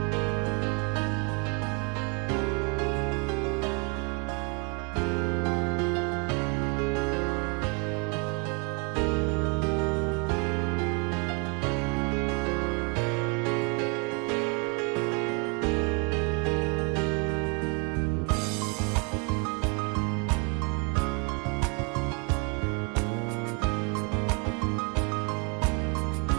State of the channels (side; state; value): left; quieter; 34.6 dB